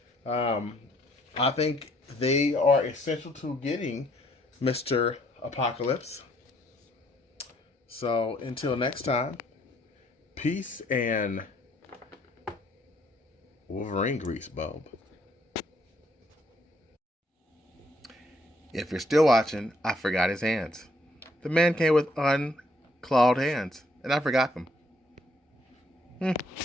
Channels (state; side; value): normal; both; correlation 0.67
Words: I think they are essential to getting Mr. Apocalypse. So until next time, peace and Wolverine grease bulb. If you're still watching, I forgot his hands. The man came with unclawed hands, and I forgot them.